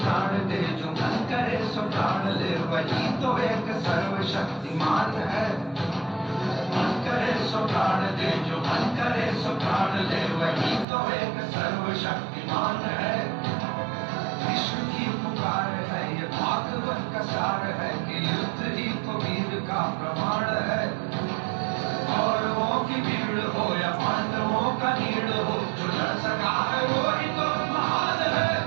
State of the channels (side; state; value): left; drops out; at 10.9 s